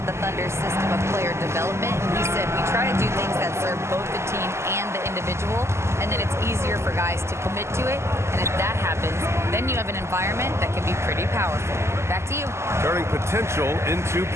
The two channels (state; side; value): late; left; 0.13 ms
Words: the Thunder's system of player development. He said, we try to do things that serve both the team and the individual, and then it's easier for guys to commit to it. And if that happens, then you have an environment that can be pretty powerful. Back to you. Turning potential into